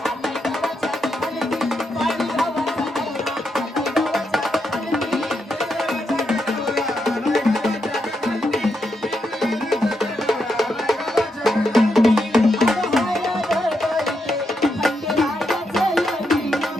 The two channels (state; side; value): normal; both; correlation 0.82